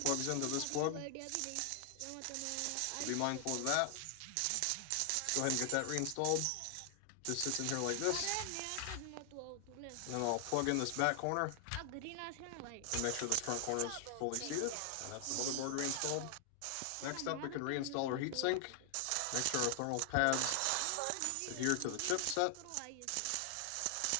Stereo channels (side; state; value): both; different; correlation 0.00